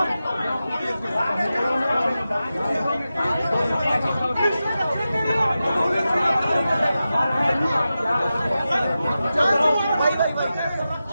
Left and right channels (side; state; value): both; inverted; correlation -0.92